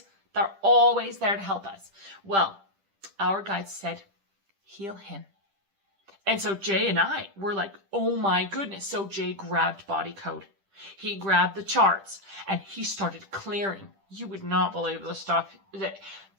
They're always there to help us. Well, our guides said, heal him. And so Jay and I were like, oh my goodness. So Jay grabbed Body Code. He grabbed the charts, and he started clearing. You would not believe the stuff that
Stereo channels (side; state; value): left; late; 10 ms